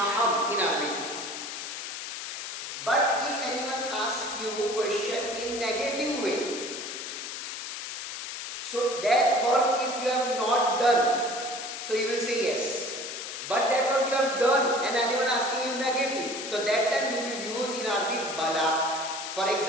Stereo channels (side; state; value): left; noise; hiss, 7 dB below the sound